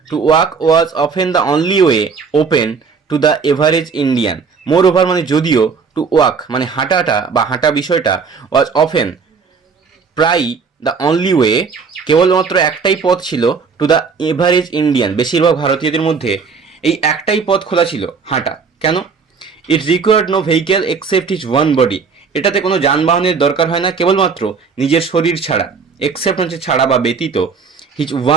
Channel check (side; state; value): left; quieter; 5.4 dB